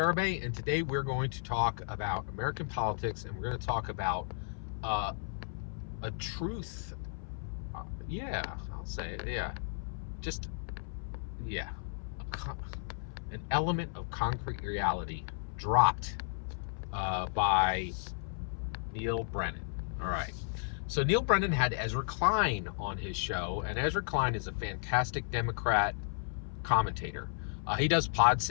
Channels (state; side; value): silent; right; 55 dB below the other